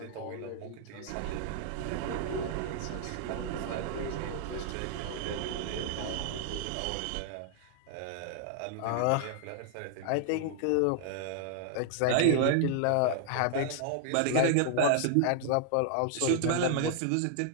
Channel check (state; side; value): different; both; correlation -0.01